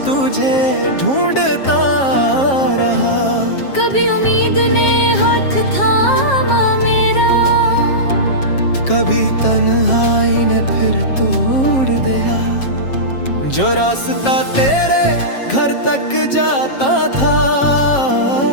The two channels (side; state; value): right; late; 7.4 ms